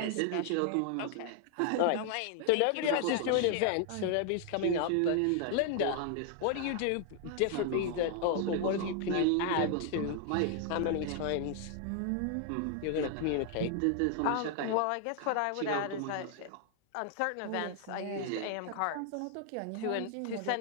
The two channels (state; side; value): different; both; correlation 0.00